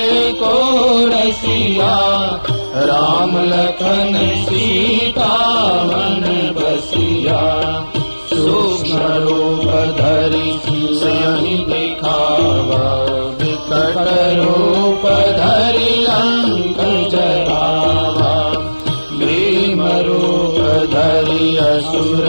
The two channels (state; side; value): inverted; both; correlation -1.00